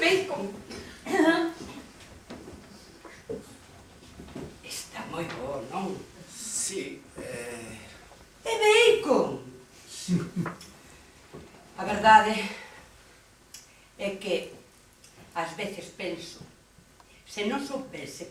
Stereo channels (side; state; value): both; identical; correlation 1.00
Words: Está moi bo, non? Sí, É bacon. A verdade é que ás veces penso, se non